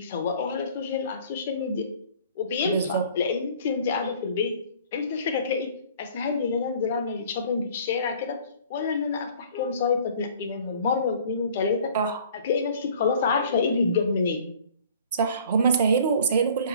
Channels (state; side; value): inverted; both; correlation -0.51